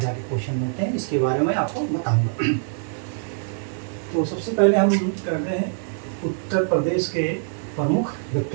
के क्वेश्चन बनते हैं, इसके बारे में आपको बताऊंगा। तो सबसे पहले हम कर रहे हैं उत्तर प्रदेश के प्रमुख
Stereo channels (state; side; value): silent; left; digital silence